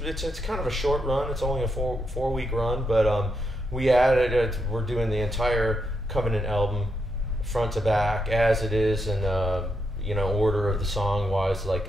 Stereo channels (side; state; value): both; normal; correlation 0.82